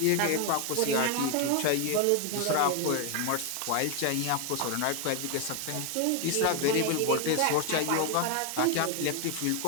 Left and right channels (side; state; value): both; different; correlation 0.01